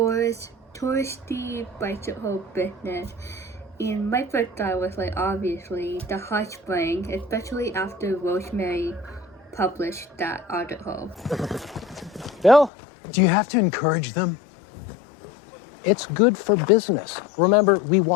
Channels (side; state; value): right; drops out; at 12.7 s